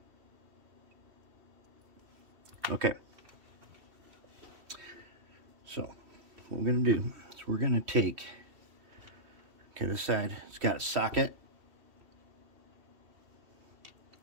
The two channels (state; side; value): late; left; 2.7 ms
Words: Okay. So what we're going to do is we're going to take, okay, this side, it's got a socket.